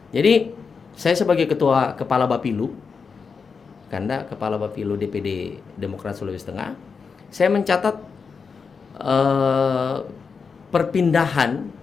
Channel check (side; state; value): right; quieter; 5.4 dB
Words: Jadi saya sebagai kepala Bapilu, Kanda, kepala Bapilu DPD Demokrat Sulawesi Tengah, saya mencatat perpindahan